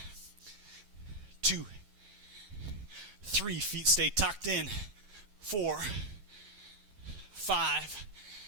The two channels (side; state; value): left; late; 10 ms